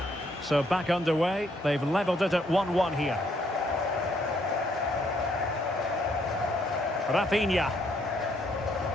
So back underway. They've levelled it at 1-1 here. Rafinha.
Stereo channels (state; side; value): normal; both; correlation 0.70